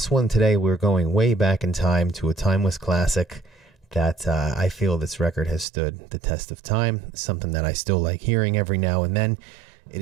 one today, we're going way back in time to a timeless classic that I feel this record has stood the test of time, something that I still like hearing every now and then. It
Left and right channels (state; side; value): drops out; left; at 5.7 s